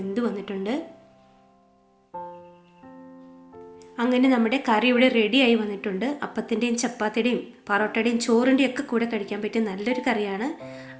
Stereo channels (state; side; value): identical; both; correlation 1.00